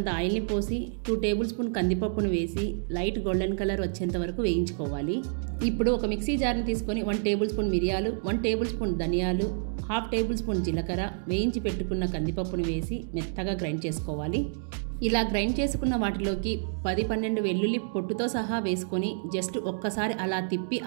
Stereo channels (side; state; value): left; silent; digital silence